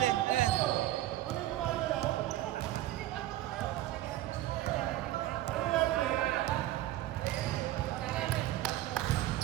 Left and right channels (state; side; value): quieter; left; 14.7 dB